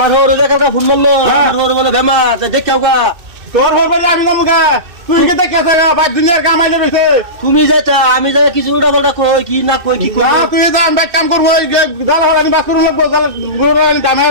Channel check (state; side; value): late; left; 2.7 ms